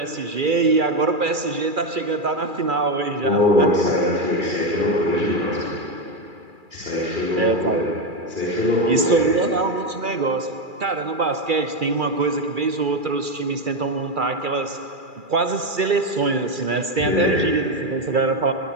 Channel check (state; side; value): late; left; 2.4 ms